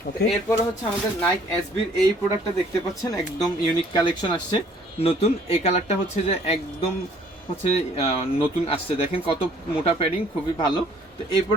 এরপরে হচ্ছে আমাদের নাইক এসবির এই প্রোডাক্টটা দেখতে পাচ্ছেন, একদম ইউনিক কালেকশন আসছে নতুন। এই কালারটা হচ্ছে যে একদম হচ্ছে নতুন আসছে, দেখেন কত মোটা প্যাডিং, খুবই ভালো। তো এই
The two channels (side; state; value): both; normal; correlation 0.59